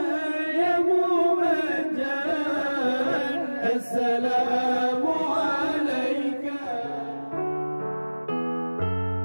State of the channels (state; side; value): inverted; both; correlation -1.00